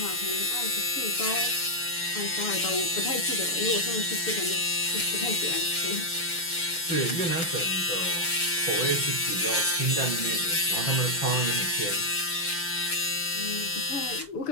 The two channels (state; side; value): late; right; 6.4 ms